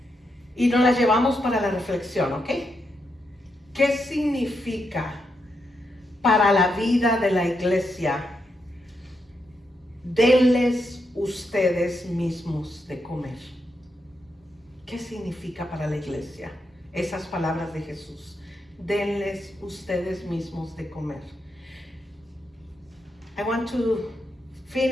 Y nos la llevamos para la reflexión, ¿ok? ¿Qué significa para la vida de la iglesia? Denles ustedes mismos de comer. ¿Qué significa para la iglesia? Esas palabras de Jesús. Denles ustedes mismos de comer. I want to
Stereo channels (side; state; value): both; normal; correlation 0.82